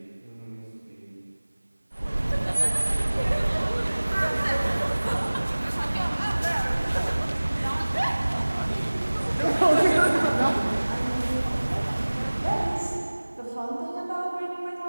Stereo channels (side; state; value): both; inverted; correlation -1.00